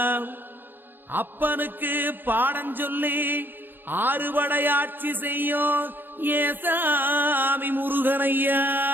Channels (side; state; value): left; late; 0.095 ms